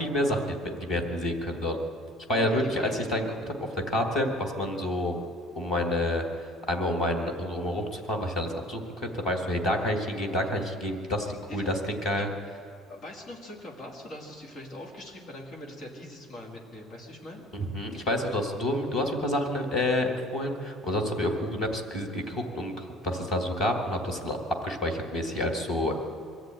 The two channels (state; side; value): normal; both; correlation 0.48